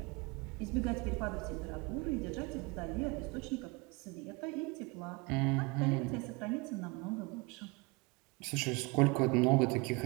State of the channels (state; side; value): quieter; left; 26.8 dB